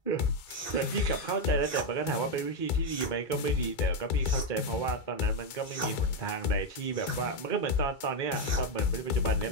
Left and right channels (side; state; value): right; late; 2.4 ms